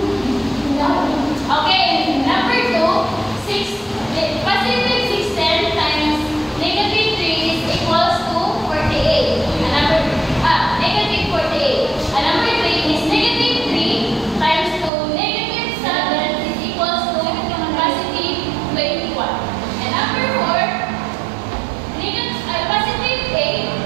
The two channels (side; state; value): left; drops out; at 14.9 s